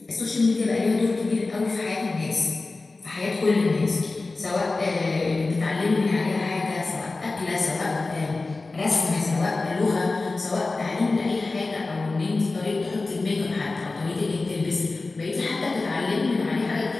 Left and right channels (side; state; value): right; quieter; 3.5 dB